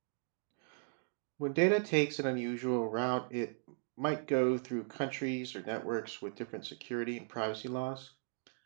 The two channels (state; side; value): silent; left; digital silence